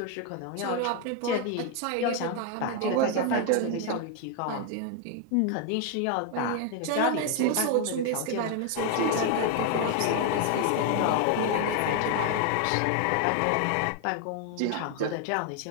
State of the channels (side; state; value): both; different; correlation 0.01